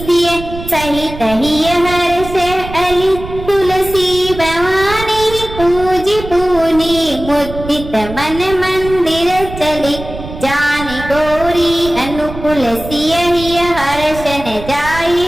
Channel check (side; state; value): right; noise; rumble, 11 dB below the sound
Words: सिय सहित हिय हर्ष अली तुलसी भवानी पूजी पूनी मुदित मन मंदिर चली जानी गौरी अनुकूल सिय हिय हर्ष न जाई